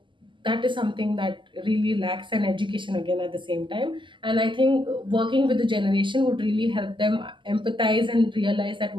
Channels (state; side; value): late; left; 0.24 ms